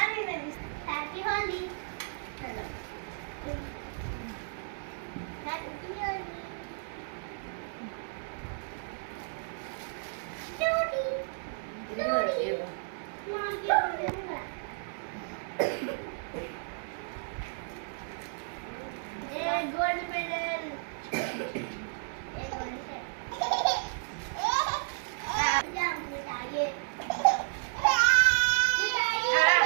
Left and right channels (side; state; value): left; silent; digital silence